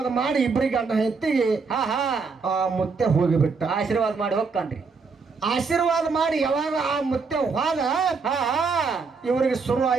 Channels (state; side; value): quieter; left; 4.8 dB